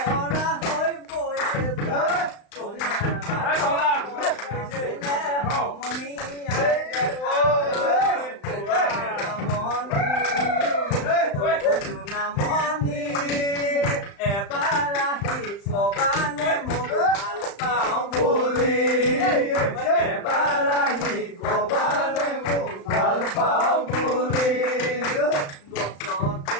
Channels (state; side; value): late; right; 35 ms